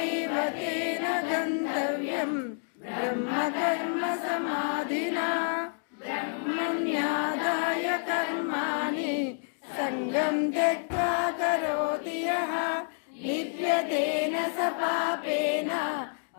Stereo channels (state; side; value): silent; right; digital silence